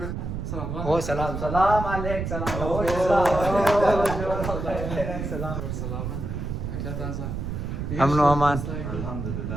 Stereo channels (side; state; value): right; noise; rumble, 4 dB below the sound